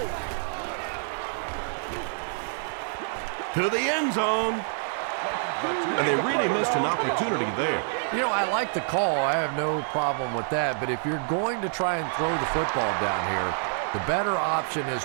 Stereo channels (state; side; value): silent; left; digital silence